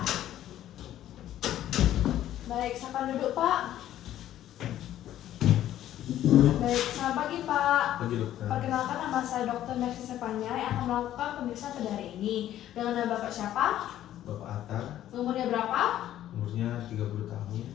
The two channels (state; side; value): quieter; right; 12.4 dB